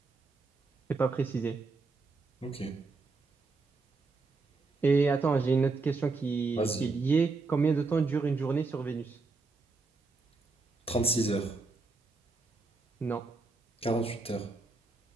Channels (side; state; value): left; quieter; 3.9 dB